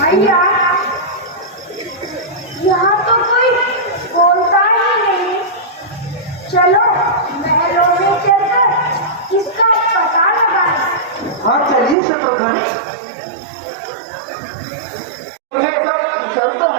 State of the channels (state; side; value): drops out; left; at 12.0 s